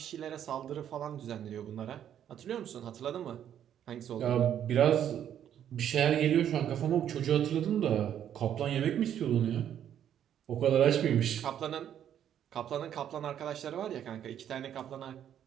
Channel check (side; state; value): left; quieter; 10.0 dB